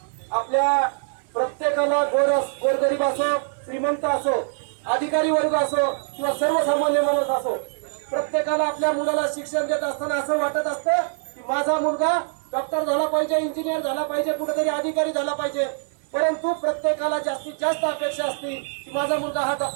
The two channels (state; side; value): silent; left; 62 dB below the other